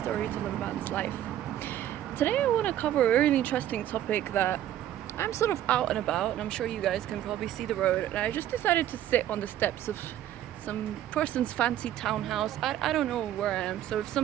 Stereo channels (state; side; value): quieter; left; 12.1 dB